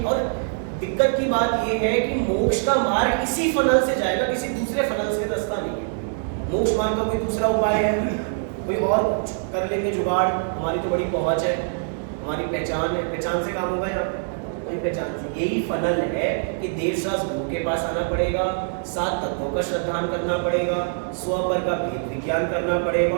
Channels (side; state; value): left; silent; digital silence